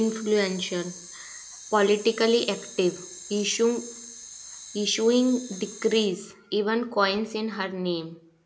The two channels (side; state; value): both; identical; correlation 1.00